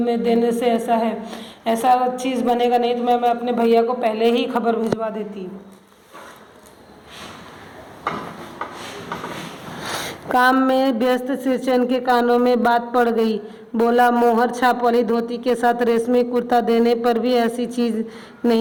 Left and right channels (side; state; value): both; identical; correlation 1.00